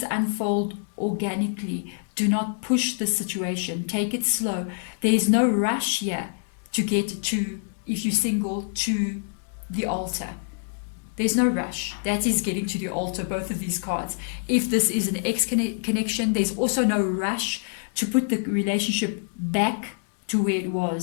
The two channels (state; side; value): silent; right; digital silence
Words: unfold organically. Do not push the situation. Take it slow. There is no rush here to get to, if you're single, to the altar. There's no rush. That is getting to the altar, both of these cards. If this is an ex-connection, there's also no rush to put the relationship back to where it